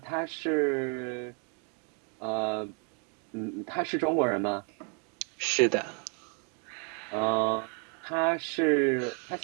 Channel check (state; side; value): quieter; left; 38.2 dB